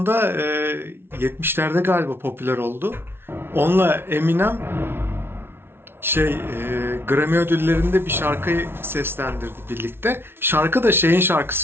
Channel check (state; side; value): late; left; 0.11 ms